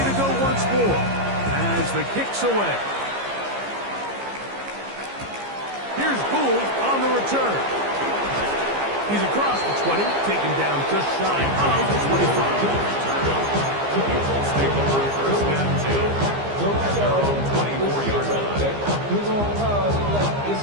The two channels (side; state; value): left; late; 15 ms